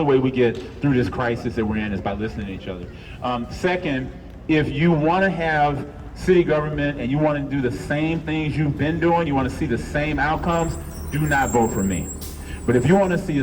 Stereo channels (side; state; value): both; identical; correlation 1.00